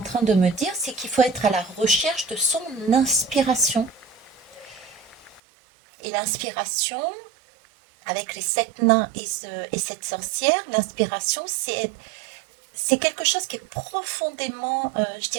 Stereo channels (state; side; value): drops out; left; at 5.4 s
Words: train de me dire, c'est qu'il faut être à la recherche de son inspiration. Et l'inspiration, avec les sept nains et cette sorcière, l'inspiration, c'est quelque chose qui est profondément, je